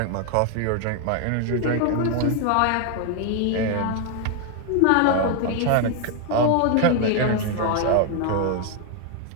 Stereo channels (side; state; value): both; different; correlation 0.00